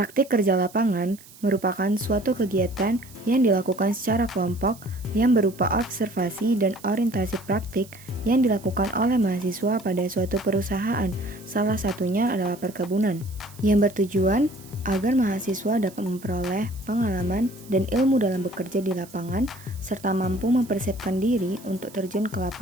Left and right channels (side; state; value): right; noise; hiss, 21 dB below the sound